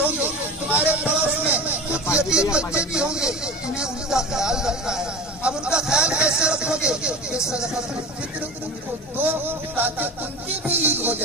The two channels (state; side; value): normal; both; correlation 0.31